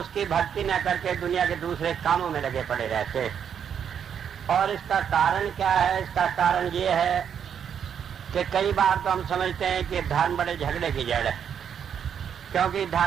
भक्ति न करके दुनिया के दूसरे कामों में लगे पड़े रहते। और इसका कारण क्या है? इसका कारण ये है कि कई बार तो हम समझते हैं कि धर्म बड़े झगड़े की जड़ है, क्योंकि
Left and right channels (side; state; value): left; quieter; 8.1 dB